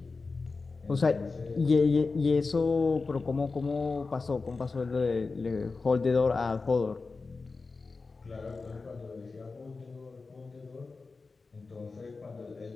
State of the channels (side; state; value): right; quieter; 4.1 dB